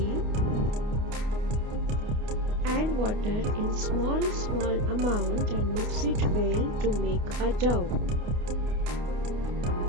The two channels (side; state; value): left; late; 29 ms